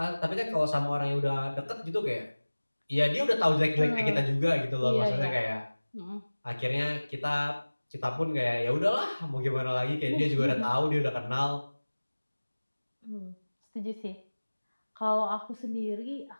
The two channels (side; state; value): both; inverted; correlation -1.00